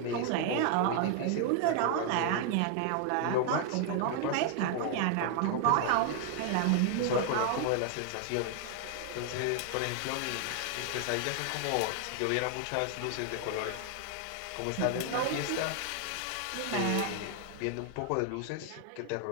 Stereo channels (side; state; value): both; different; correlation 0.00